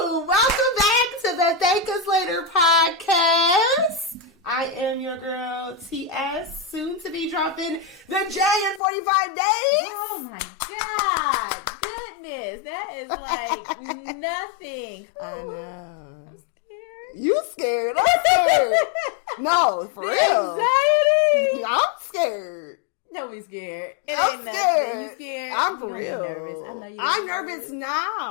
I am your girl, TS, soon to be dropping the J in 45 days. Oh my God. Goodness. That is like nothing. I know. I'm scared. You scared? I'm scared. No, for The real. anxiety. I'm scared. Don't be scared. It I'm ain't nothing. scared. You scared? I'm for you gonna real. be nervous. I know you're I'm nervous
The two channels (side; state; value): right; drops out; at 8.8 s